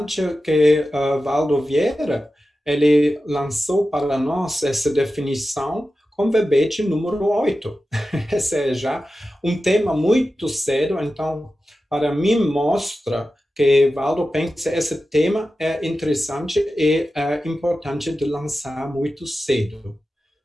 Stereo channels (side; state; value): both; normal; correlation 0.93